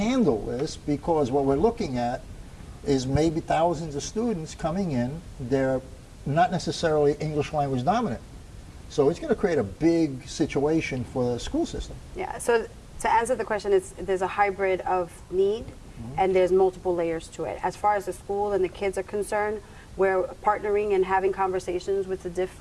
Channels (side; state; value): both; identical; correlation 1.00